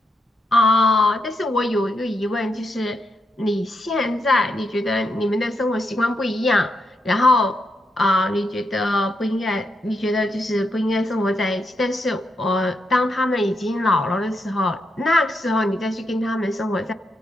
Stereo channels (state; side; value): normal; both; correlation 0.82